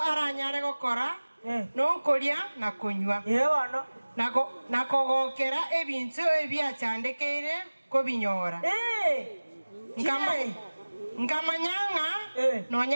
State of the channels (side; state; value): both; inverted; correlation -1.00